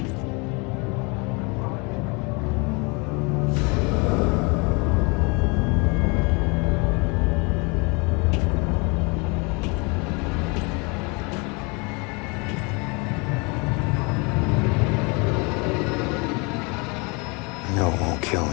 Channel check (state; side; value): quieter; right; 29.9 dB